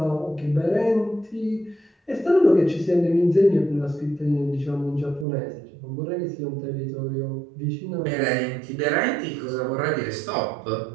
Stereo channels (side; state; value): left; drops out; at 5.2 s